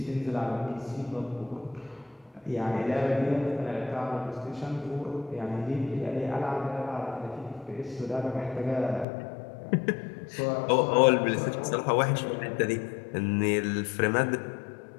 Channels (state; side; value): drops out; right; at 9.1 s